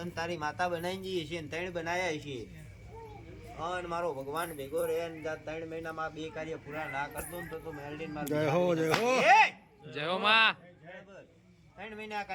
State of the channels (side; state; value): both; identical; correlation 1.00